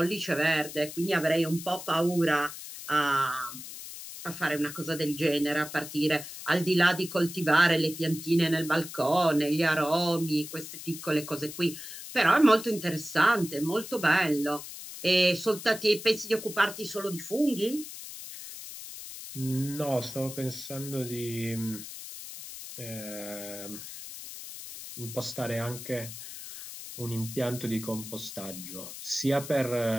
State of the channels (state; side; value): noise; left; hiss, 11 dB below the sound